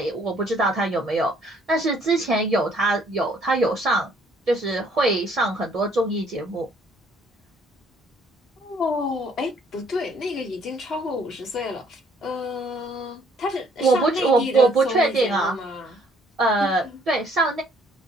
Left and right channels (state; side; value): normal; both; correlation 0.63